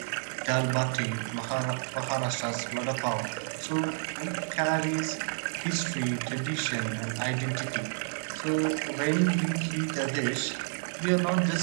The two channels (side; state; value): left; silent; digital silence